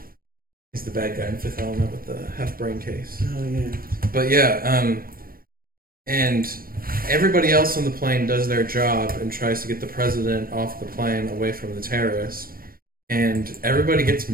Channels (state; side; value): late; left; 0.42 ms